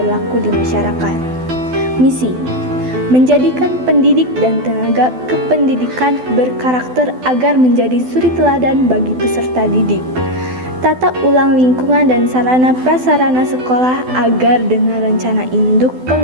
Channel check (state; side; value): late; left; 12 ms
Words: di masyarakat. Misi, menjadikan pendidik dan tenaga kependidikan berkarakter agar menjadi suri teladan bagi peserta didik. Tata ulang lingkungan dan sarana prasarana sekolah agar dengan rencana induk